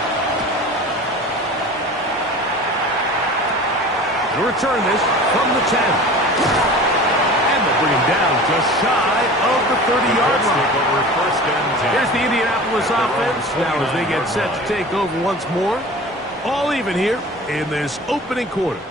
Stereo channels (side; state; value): both; normal; correlation 0.38